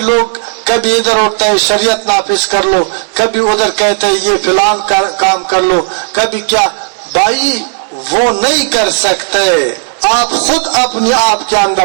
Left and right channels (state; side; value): silent; left; 68 dB below the other